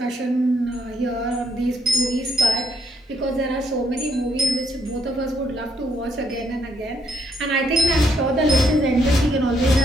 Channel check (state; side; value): normal; both; correlation 0.72